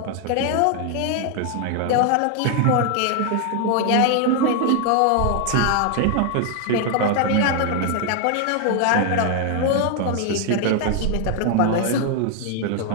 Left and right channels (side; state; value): both; different; correlation 0.00